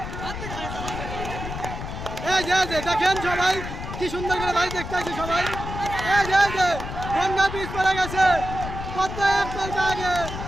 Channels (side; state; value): left; noise; rumble, 7 dB below the sound